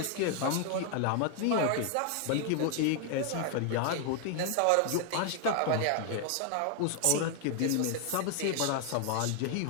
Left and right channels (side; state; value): both; different; correlation 0.00